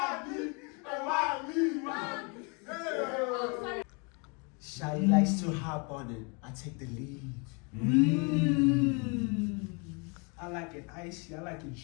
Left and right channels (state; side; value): quieter; right; 33.1 dB